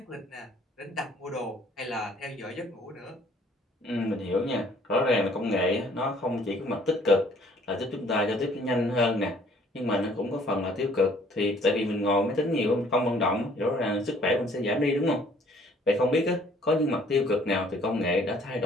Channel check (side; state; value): both; normal; correlation 0.59